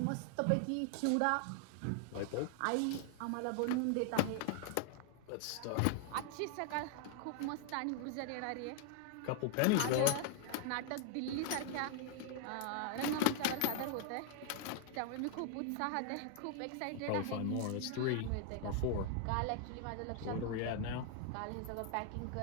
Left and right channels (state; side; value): different; both; correlation 0.00